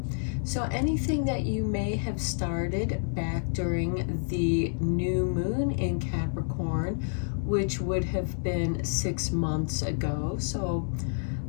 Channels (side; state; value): right; silent; digital silence